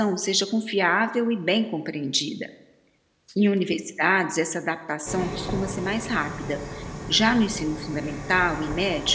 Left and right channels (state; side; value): identical; both; correlation 1.00